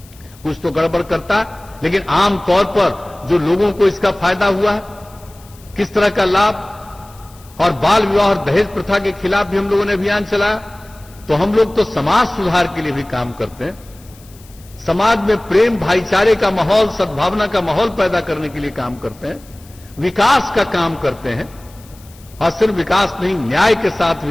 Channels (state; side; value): noise; left; hiss, 25 dB below the sound